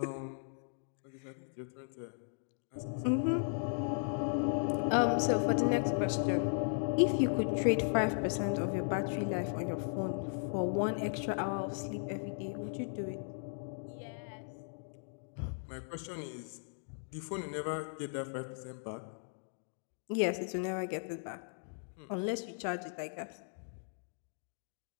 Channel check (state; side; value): silent; right; digital silence